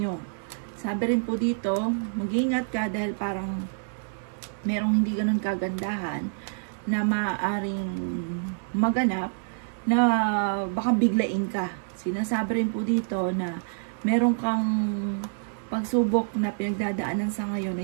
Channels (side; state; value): left; silent; digital silence